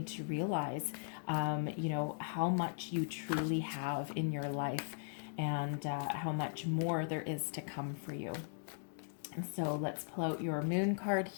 to realize, how much you truly have in your life and how much more there is to come for you. And so let's pull out your moon card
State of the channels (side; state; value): right; silent; digital silence